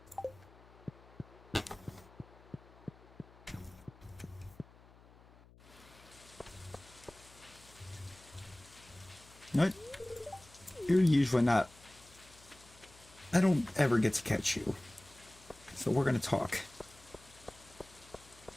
No, you're usually not. I don't ever get to catch you. So we're going to talk.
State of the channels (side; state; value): left; noise; hum, 23 dB below the sound